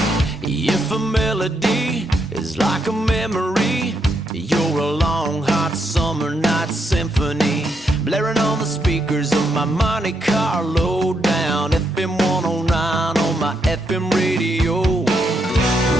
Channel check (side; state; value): both; normal; correlation 0.79